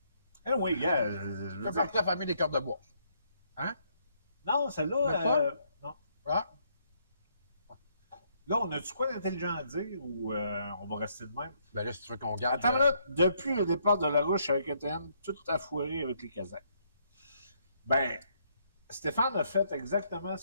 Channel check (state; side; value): inverted; both; correlation -0.71